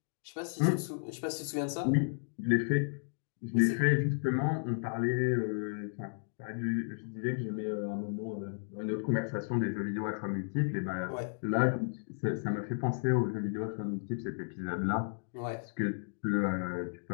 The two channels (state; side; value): silent; right; digital silence